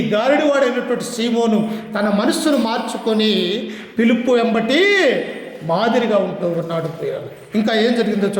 గారడి వాడైనటువంటి సీమోను తన మనస్సును మార్చుకొని పిలుపు వెంబటి మాదిరిగా ఉంటూ ఉన్నాడు. ప్రియులు, ఇంకా ఏం జరిగిందో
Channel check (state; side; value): identical; both; correlation 1.00